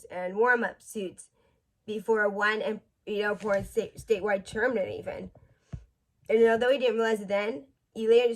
and warm-up suits before one important statewide tournament even. And although he didn't realize it then, he later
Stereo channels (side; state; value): both; identical; correlation 1.00